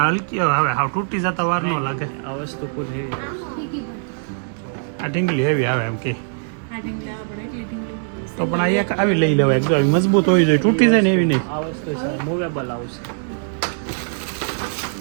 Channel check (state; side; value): silent; left; digital silence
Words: હલકી હવે હાવ તૂટી જતા વાર ન લાગે આ વસ્તુ આ ઢીંગલી હેવી આવે એમ કે તો પણ આ એક આવી લઈ લેવાય જો આવી મજબૂત હોવી જોઈએ તૂટી જાય ને એવી નહીં આ વસ્તુ છે મૂવેબલ આવશે